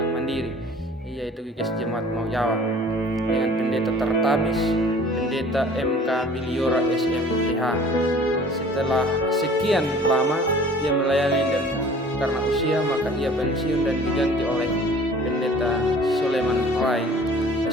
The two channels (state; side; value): normal; both; correlation 0.49